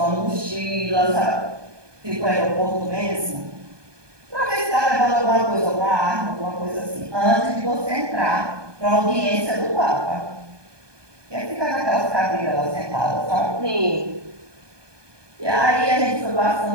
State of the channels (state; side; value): late; left; 1.2 ms